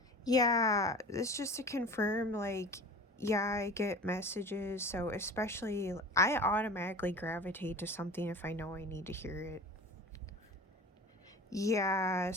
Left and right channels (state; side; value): normal; both; correlation 0.38